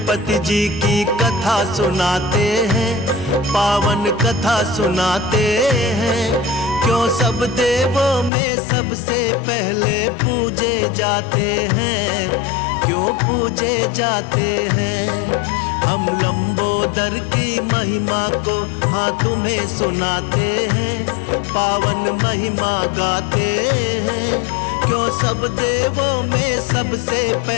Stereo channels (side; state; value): right; drops out; at 8.3 s